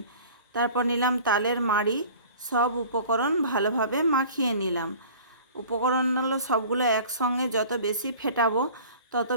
তারপর নিলাম তালের মাড়ি। সব উপকরণ ভালোভাবে মাখিয়ে নিলাম। উপকরণগুলো সবগুলো একসঙ্গে যত বেশি ফেটাবো তত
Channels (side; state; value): both; inverted; correlation -0.45